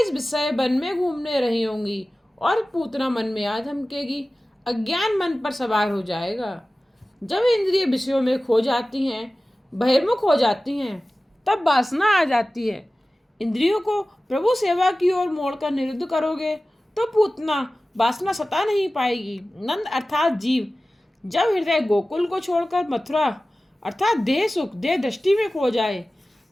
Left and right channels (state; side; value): normal; both; correlation 0.96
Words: इस विषय वन में घूमने रही होंगी और पूतना मन में आ धमकेगी। अज्ञान मन पर सवार हो जाएगा। जब इंद्रिय विषयों में खो जाती हैं, बहिर्मुख हो जाती हैं, तब वासना आ जाती है। इंद्रियों को प्रभु सेवा की ओर मोड़कर निरुद्ध करोगे तो पूतना वासना सता नहीं पाएगी। नंद अर्थात जीव जब हृदय गोकुल को छोड़कर मथुरा अर्थात देह सुख, देह दृष्टि में खो जाए,